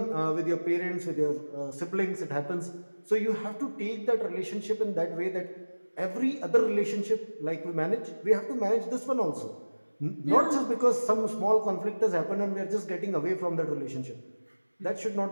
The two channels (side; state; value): both; inverted; correlation -1.00